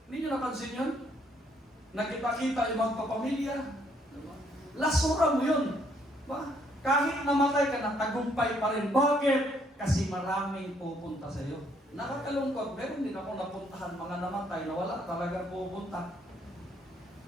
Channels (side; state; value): both; normal; correlation 0.68